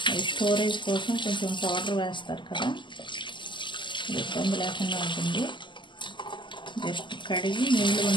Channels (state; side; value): late; right; 0.23 ms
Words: అవి స్టోరేజ్ కోసం కొంచెం పౌడర్ వేస్తారు కదా, ఇబ్బంది లేకుండా ఉంటుంది. జస్ట్ కడిగి నీళ్ళు